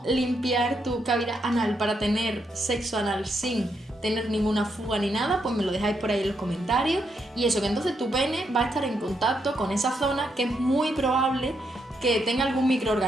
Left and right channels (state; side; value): normal; both; correlation 0.79